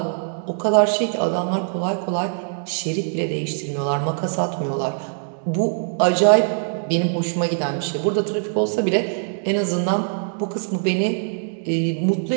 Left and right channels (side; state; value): left; silent; digital silence